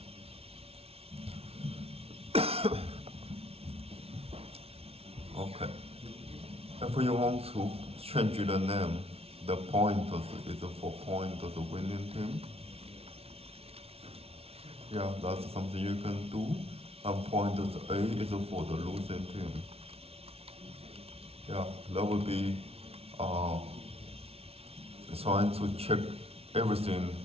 Okay. If you want to change the name, the pointers is for pointers winning team. Yeah, that's something you can do. And pointers A is for the losing team. Yeah, that would be trying to check everything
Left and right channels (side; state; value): left; late; 0.29 ms